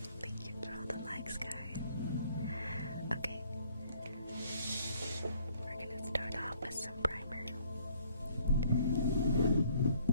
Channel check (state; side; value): inverted; both; correlation -0.61